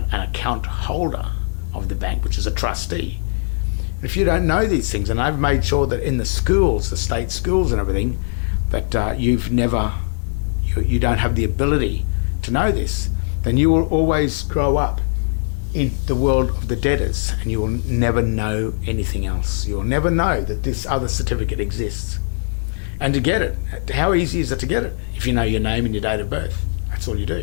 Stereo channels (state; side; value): silent; right; digital silence